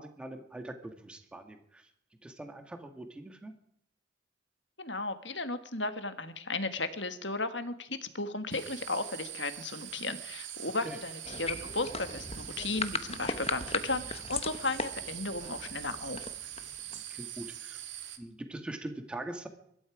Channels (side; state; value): both; normal; correlation -0.13